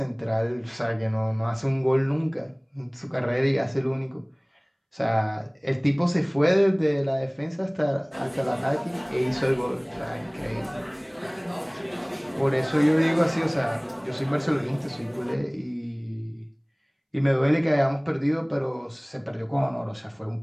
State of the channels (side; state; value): both; identical; correlation 1.00